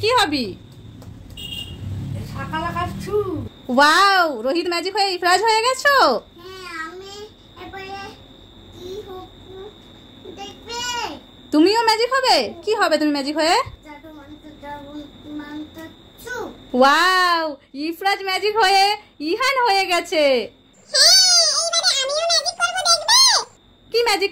কি হবি? শাকা লাগাচ্ছু। ওয়াও, রোহিত ম্যাজিক হয়ে ইফরাজ হয়ে গেছো। হ্যাঁ, আমি এবারে কি হবে দেখবে? তুমিও ম্যাজিক হবে? কি হবে তুমি ম্যাজিক হয়ে? জাদু মন্ত্র চু। ওয়াও, ইফরাজ ম্যাজিক হয়ে ইহান হয়ে গেছে। এবারে আমিও ম্যাজিক করব দেখবে? কি ম্যাজিক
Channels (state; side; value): identical; both; correlation 1.00